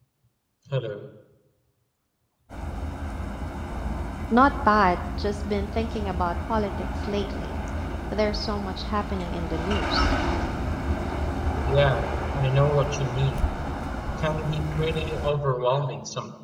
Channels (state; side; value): identical; both; correlation 1.00